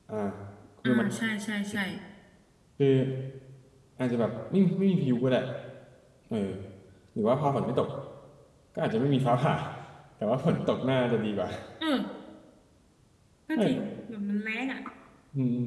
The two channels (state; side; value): identical; both; correlation 1.00